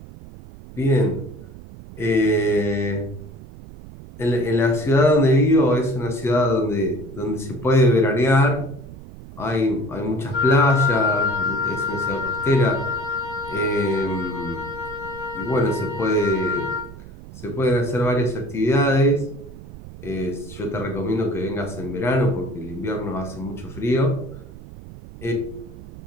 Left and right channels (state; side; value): noise; right; rumble, 16 dB below the sound